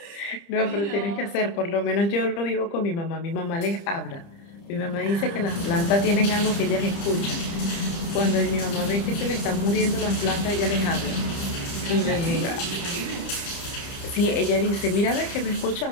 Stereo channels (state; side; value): late; right; 30 ms